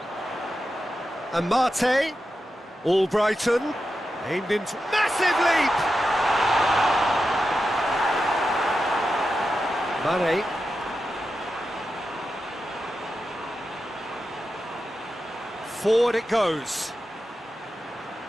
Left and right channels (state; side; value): normal; both; correlation 0.90